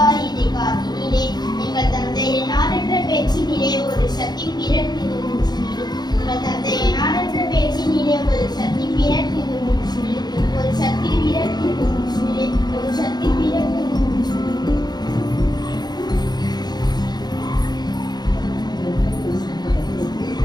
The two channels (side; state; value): right; late; 0.20 ms